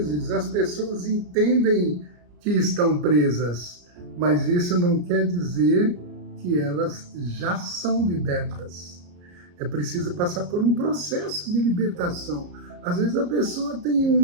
as pessoas entendem que estão presas, mas isso não quer dizer que elas já são libertas. É preciso passar por um processo de libertação. Às vezes a pessoa tem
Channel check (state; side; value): late; left; 34 ms